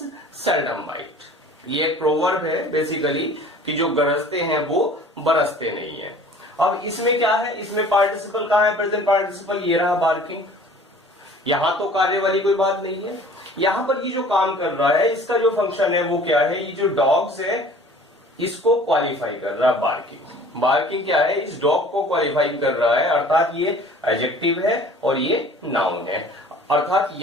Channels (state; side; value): normal; both; correlation 0.48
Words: seldom bite, ये एक प्रोवर्ब है बेसिकली कि जो गरजते हैं वो बरसते नहीं है। अब इसमें क्या है, इसमें पार्टिसिपल कहां है, प्रेजेंट पार्टिसिपल, ये रहा बार्किंग। यहां तो कार्य वाली कोई बात नहीं है। यहां पर ये जो काम कर रहा है इसका जो फंक्शन है वो क्या है, ये जो डॉग्स है इसको क्वालिफाई कर रहा है बार्किंग। बार्किंग क्या है, इस डॉग को क्वालिफाई कर रहा है, अर्थात ये एडजेक्टिव है और ये नाउन है। अर्थात